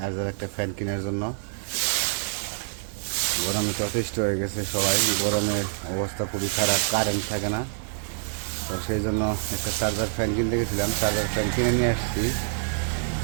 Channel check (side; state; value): left; silent; digital silence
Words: একটা ফ্যান কেনার জন্য। গরমে যথেষ্ট হয়ে গেছে সবাই, গরমের অবস্থা খুবই খারাপ, কারেন্ট থাকে না। তো সেই জন্য একটা চার্জার ফ্যান কিনতে গেছিলাম, চার্জার ফ্যান কিনে নিয়ে আসছি।